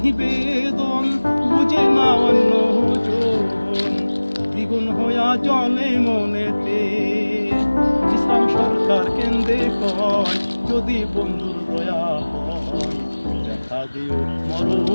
বেদন বুঝে না অন্যজন, দ্বিগুণ হইয়া জলে মনেতে। ইসলাম সরকার কেন্দ্রে কয় যদি বন্ধুর দয়া হয়, দেখা দিও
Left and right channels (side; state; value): both; inverted; correlation -1.00